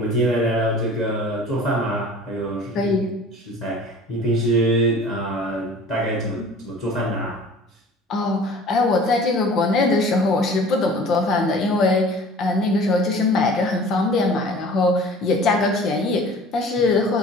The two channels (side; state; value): both; normal; correlation 0.45